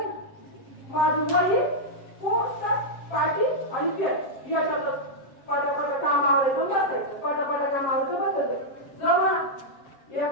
माझी वडी पोचतात पाठी आणि पेट याच्यातच पटापट कामावरचं बसायचं बसायचं जमना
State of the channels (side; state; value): right; late; 7.4 ms